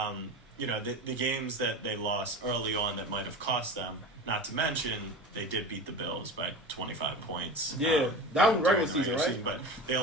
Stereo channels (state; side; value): normal; both; correlation 0.31